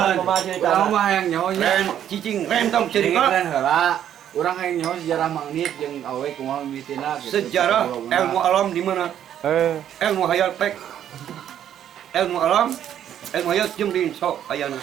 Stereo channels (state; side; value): quieter; left; 10.3 dB